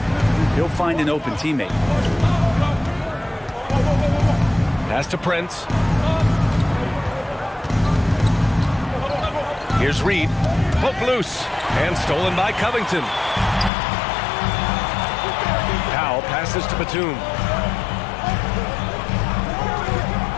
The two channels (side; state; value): right; drops out; at 13.7 s